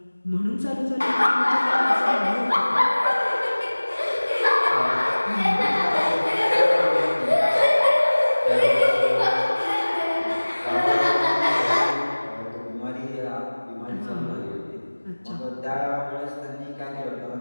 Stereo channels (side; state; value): both; inverted; correlation -1.00